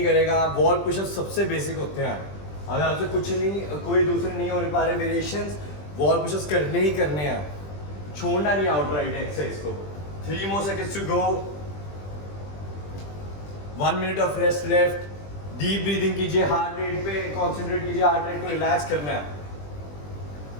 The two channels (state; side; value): late; right; 20 ms